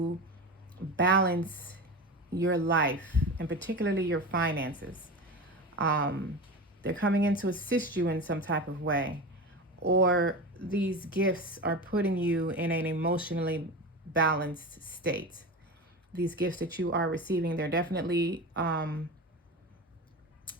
balance your life and particularly your finances. They're coming in to assist you in some type of way, or these gifts are putting you in an emotionally balanced state. These gifts that you are receiving, they're definitely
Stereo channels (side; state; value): both; normal; correlation 0.26